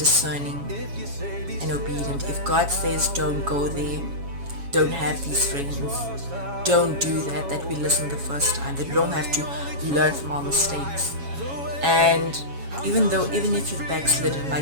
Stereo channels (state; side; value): late; left; 7.2 ms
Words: and obedient. If God says don't go there, don't have these friends, don't do that we listen the first time, that we don't have to learn from our mistakes. And even if you've backslidden,